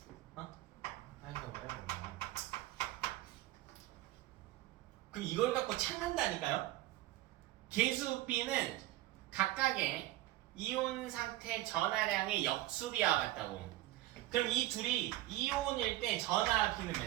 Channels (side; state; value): left; quieter; 16.4 dB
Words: 어? 아이고 뭐야. 그럼 이걸 갖고 찾는다니까요? 계수 B는 각각의 이온 상태 전하량의 역수비와 같다고. 그럼 이 둘이 이온일 때 전하 B는